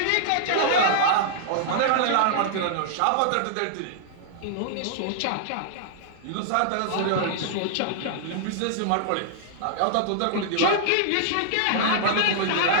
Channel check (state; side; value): different; both; correlation -0.01